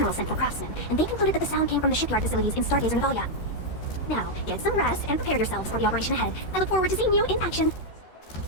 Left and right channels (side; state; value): right; late; 13 ms